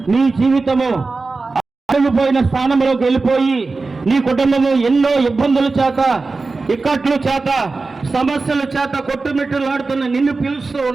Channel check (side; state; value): left; quieter; 3.8 dB